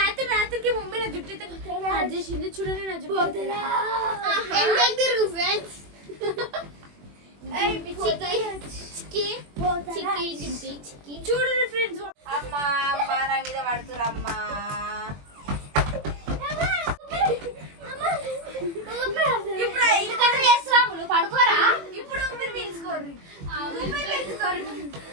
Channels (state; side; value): late; left; 21 ms